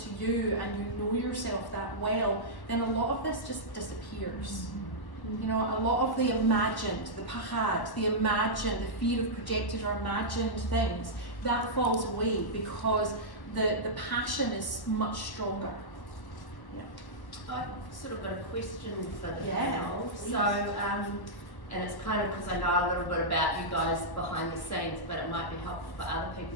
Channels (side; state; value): right; late; 1.1 ms